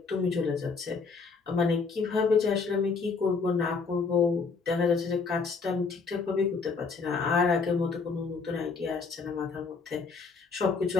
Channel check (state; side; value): quieter; right; 4.7 dB